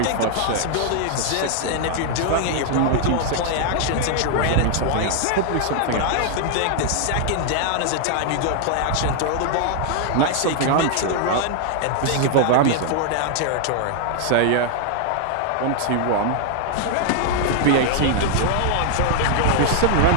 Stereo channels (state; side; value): different; both; correlation 0.00